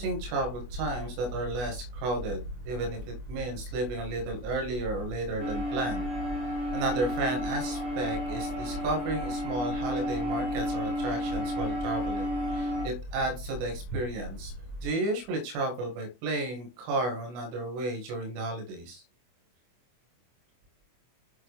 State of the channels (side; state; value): left; late; 24 ms